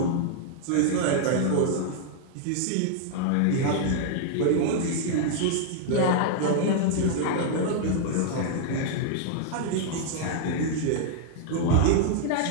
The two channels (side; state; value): both; different; correlation -0.01